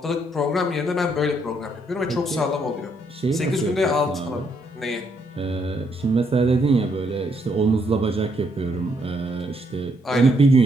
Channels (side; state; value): both; normal; correlation 0.73